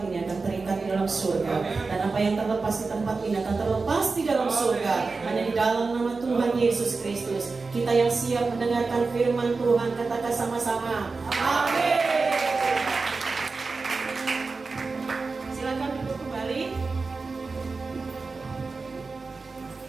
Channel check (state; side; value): quieter; left; 4.1 dB